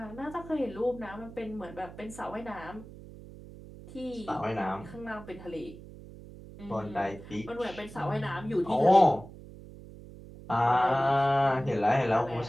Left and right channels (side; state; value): right; noise; hum, 16 dB below the sound